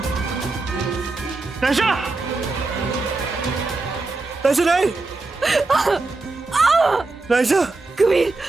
Naisha! Naisha नहीं! नायशा! कबीर,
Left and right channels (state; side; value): quieter; left; 3.5 dB